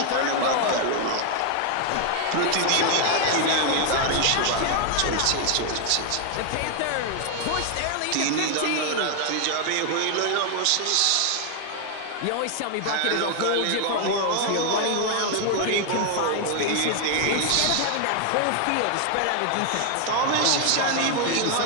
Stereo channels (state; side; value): different; both; correlation 0.00